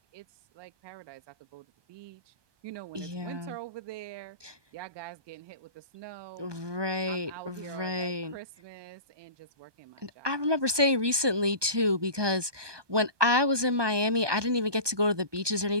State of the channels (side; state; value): left; late; 1.2 ms